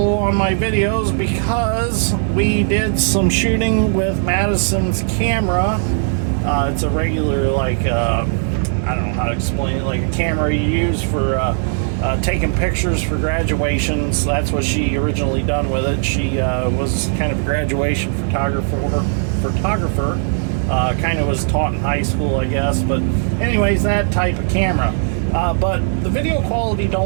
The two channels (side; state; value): left; silent; digital silence